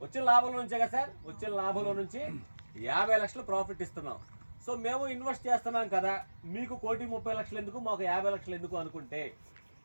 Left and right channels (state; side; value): inverted; both; correlation -1.00